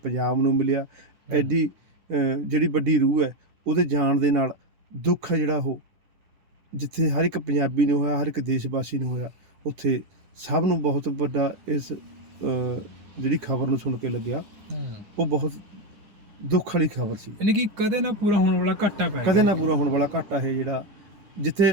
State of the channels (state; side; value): late; left; 10 ms